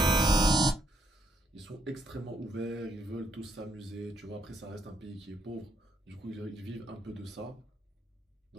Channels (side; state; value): both; normal; correlation 0.73